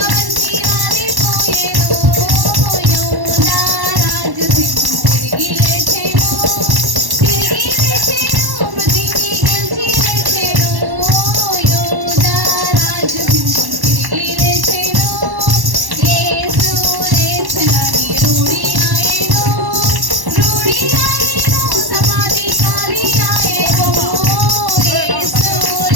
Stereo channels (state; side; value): late; left; 1.1 ms